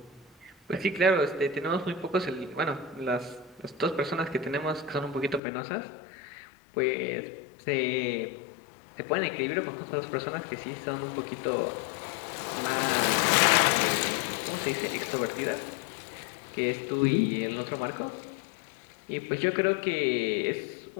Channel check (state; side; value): drops out; right; at 5.4 s